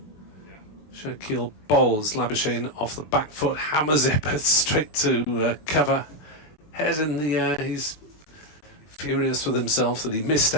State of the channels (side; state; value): right; late; 20 ms